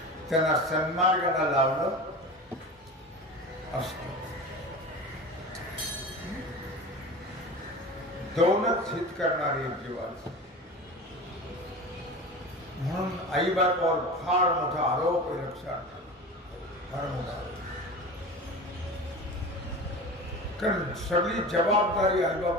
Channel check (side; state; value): both; normal; correlation 0.32